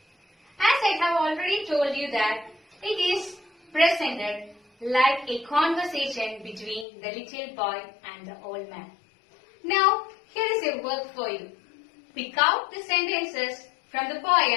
As I have already told you that it is presented like a conversation between the little boy and the old man. Now, here is a work for you. Pick out the sentences from the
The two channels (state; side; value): drops out; right; at 6.9 s